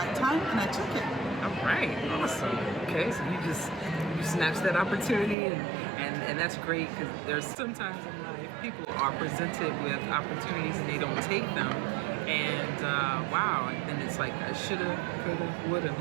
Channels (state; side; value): drops out; left; at 5.4 s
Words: time, and I took it. All right, awesome. Okay, so you snatched that opportunity, and that's great, because there's sometimes in life people are presented with opportunities and they don't take them, and wow, and then it's like I shoulda, coulda, woulda